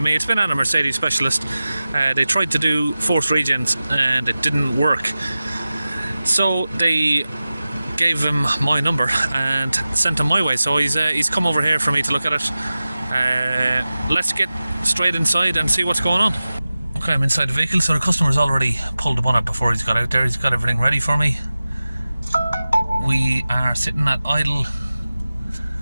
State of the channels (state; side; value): inverted; both; correlation -0.96